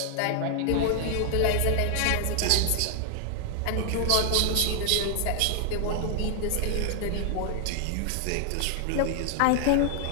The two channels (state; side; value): different; both; correlation 0.00